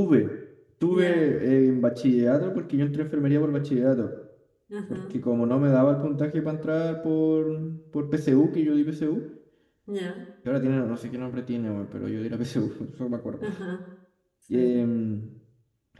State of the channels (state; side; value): identical; both; correlation 1.00